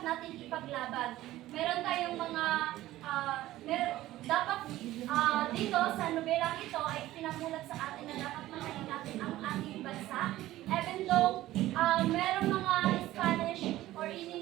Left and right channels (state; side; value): quieter; left; 15.5 dB